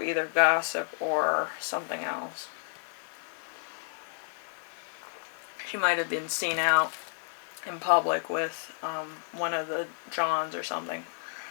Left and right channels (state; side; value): silent; right; digital silence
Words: either gossip or something else. She might have been seen out in public with one of the Johns or something.